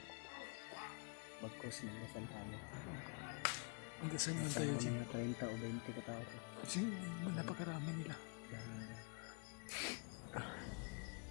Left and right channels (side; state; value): right; quieter; 35.9 dB